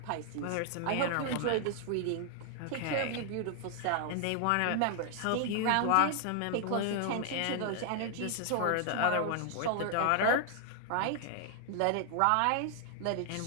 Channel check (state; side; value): different; both; correlation 0.00